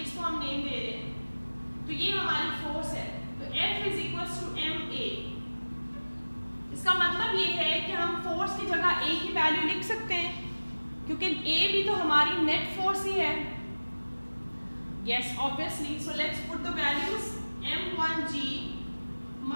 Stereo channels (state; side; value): inverted; both; correlation -1.00